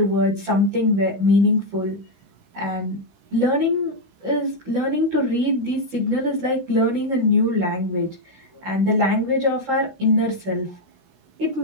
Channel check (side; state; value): left; late; 16 ms